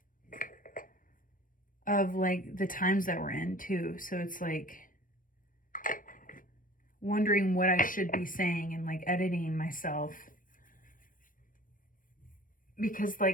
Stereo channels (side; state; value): right; late; 0.39 ms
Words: of like the times that we're in too. So it's like wondering what I should be saying and like editing myself, because